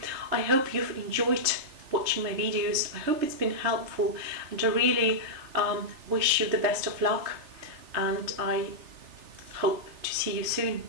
I hope you've enjoyed watching my videos. I hope it's been helpful, and I really wish you the best of luck, and I hope to see you soon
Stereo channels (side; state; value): left; late; 3.3 ms